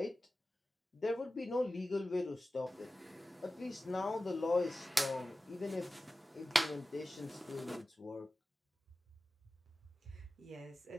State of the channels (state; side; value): normal; both; correlation 0.95